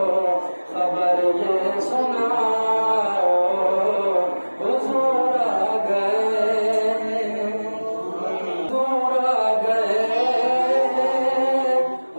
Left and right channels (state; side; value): inverted; both; correlation -1.00